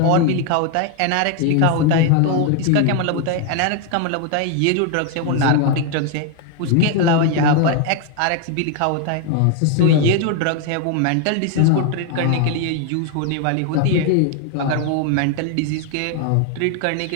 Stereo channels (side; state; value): both; different; correlation 0.01